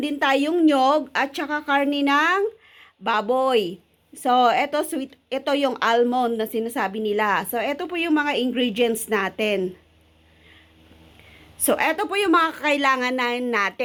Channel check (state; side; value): identical; both; correlation 1.00